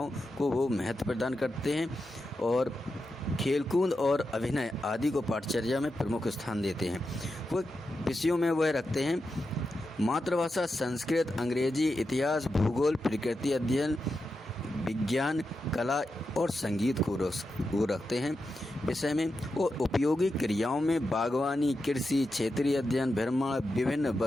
को वो महत्व प्रदान करते हैं, और खेलकूद और अभिनय आदि को पाठचर्या में प्रमुख स्थान देते हैं। वो विषयों में वह रखते हैं मातृभाषा संस्कृत, अंग्रेजी, इतिहास, भूगोल, प्रकृति अध्ययन, विज्ञान, कला और संगीत को वो रखते हैं विषय में। और उपयोगी क्रियाओं में बागवानी, कृषि, क्षेत्रीय अध्ययन, भ्रमण, विभिन्न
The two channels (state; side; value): normal; both; correlation 0.88